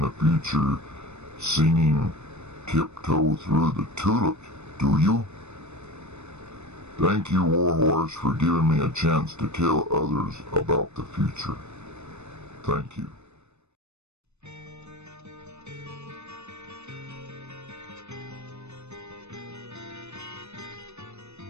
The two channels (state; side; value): late; left; 0.81 ms